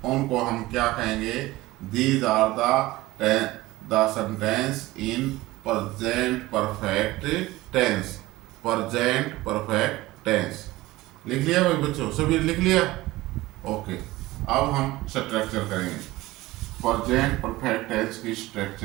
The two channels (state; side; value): quieter; left; 18.6 dB